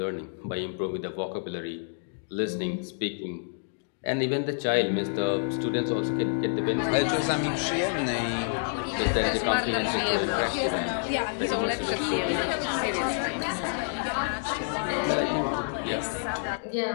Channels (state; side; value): silent; right; digital silence